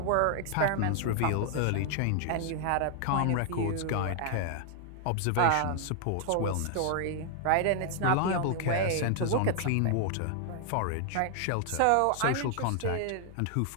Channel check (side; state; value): both; different; correlation 0.00